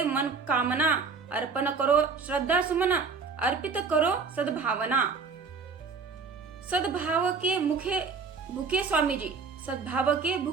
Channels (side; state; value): left; quieter; 5.0 dB